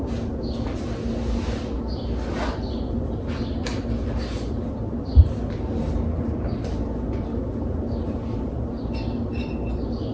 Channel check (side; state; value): both; identical; correlation 1.00